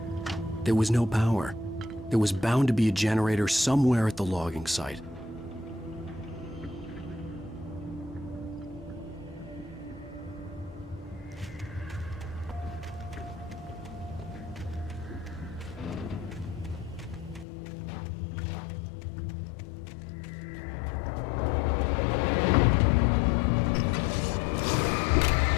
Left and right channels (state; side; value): drops out; right; at 17.4 s